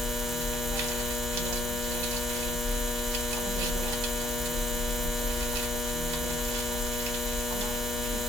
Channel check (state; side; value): normal; both; correlation 0.67